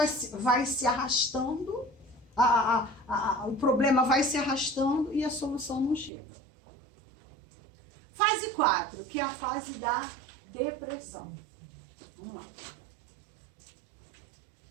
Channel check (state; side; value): drops out; left; at 6.1 s